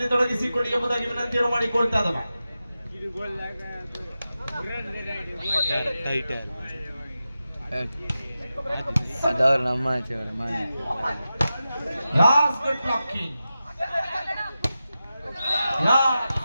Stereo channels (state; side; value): inverted; both; correlation -0.92